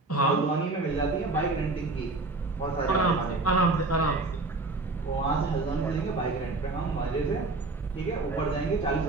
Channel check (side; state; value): left; quieter; 3.3 dB